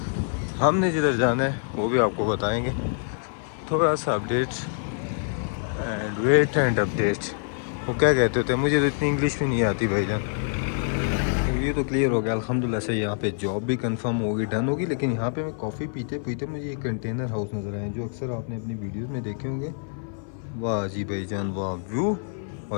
हमने जिधर जाना है वो भी आपको बताएंगे। थोड़ा सा update and wait and update, वो क्या कहते होते हैं, मुझे तो इतनी इंग्लिश भी नहीं आती भाईजान। ये तो क्लियर हो गया अल्हम्दुलिल्लाह से, यहाँ पे जॉब भी कंफर्म होगी, डन होगी। लेकिन यहाँ पे मैं कॉफ़ी पीते पीते मुझे एक कंटेनर हाउस नज़र आए जो अक्सर आपने अपनी वीडियोस में देखे होंगे। वाह जी भाईजान वाह व्यू।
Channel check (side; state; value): right; silent; 56 dB below the other